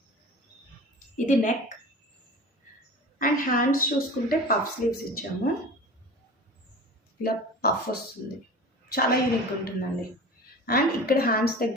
ఇది నెక్ అండ్ హ్యాండ్స్ చూసుకుంటే పఫ్ స్లీవ్స్ ఇచ్చాము. ఇలా పఫ్ వస్తుంది, చాలా యూనిక్గా ఉంటుందండి. అండ్ ఇక్కడ హ్యాండ్స్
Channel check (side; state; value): both; normal; correlation 0.36